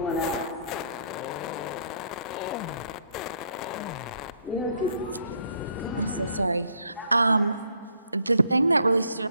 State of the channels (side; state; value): both; inverted; correlation -0.67